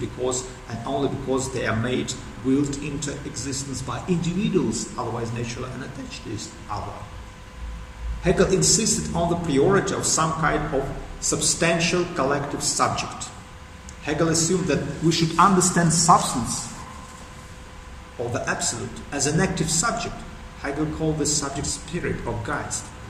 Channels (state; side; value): identical; both; correlation 1.00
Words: and only because they are made, willed into existence by individuals, otherwise naturally unattached to each other. Hegel insisted on the priority of some kind of substantial collective subject. Hegel assumed that we should understand substance, or the absolute, as an active subject. Hegel called this subject spirit or Geist,